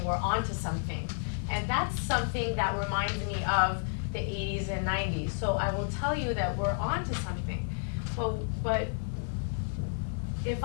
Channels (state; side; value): silent; right; 57 dB below the other